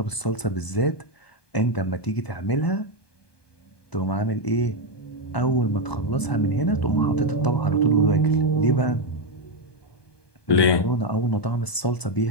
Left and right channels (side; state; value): right; late; 1.2 ms